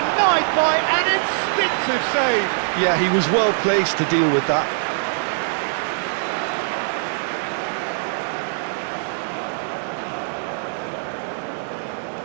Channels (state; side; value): silent; left; 63 dB below the other